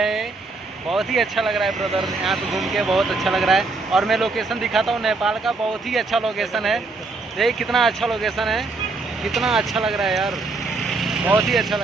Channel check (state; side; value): quieter; left; 3.7 dB